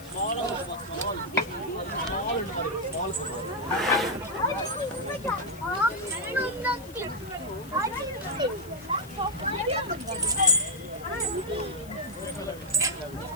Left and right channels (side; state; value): left; noise; hiss, 20 dB below the sound